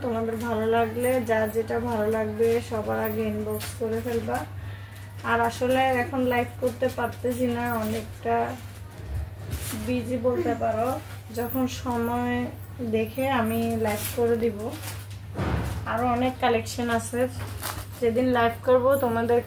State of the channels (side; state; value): both; identical; correlation 1.00